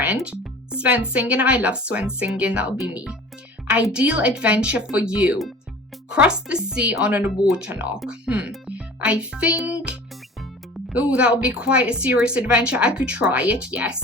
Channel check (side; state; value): both; normal; correlation 0.43